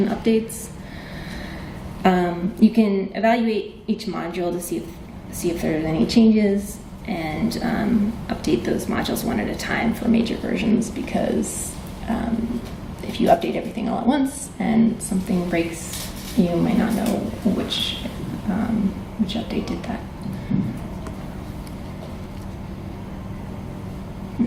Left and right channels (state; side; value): identical; both; correlation 1.00